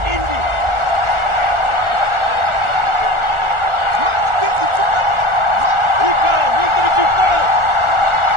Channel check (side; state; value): left; late; 1.4 ms